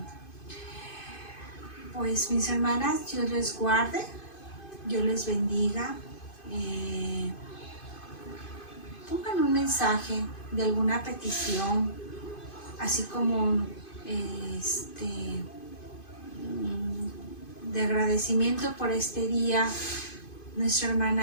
Pues mis hermanas, Dios les guarde, Dios les bendiga. Pongan un mensaje de alguna petición, así como de agradecimiento por este día. Nuestra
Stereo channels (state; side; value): late; right; 2.5 ms